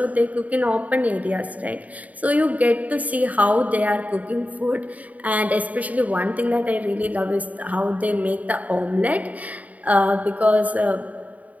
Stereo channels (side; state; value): left; late; 0.072 ms